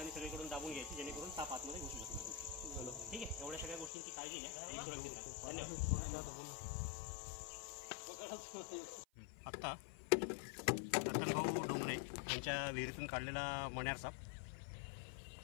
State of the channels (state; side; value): drops out; right; at 3.9 s